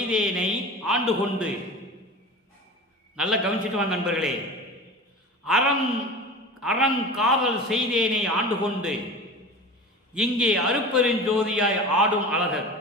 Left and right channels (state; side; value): normal; both; correlation 0.33